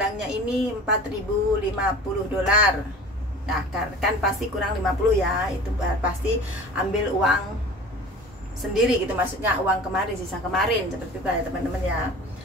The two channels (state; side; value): normal; both; correlation 0.40